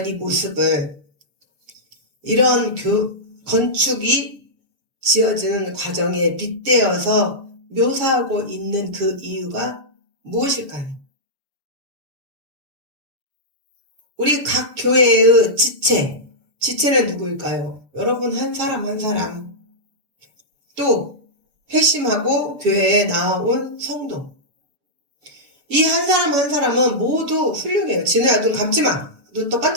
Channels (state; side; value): late; left; 7.3 ms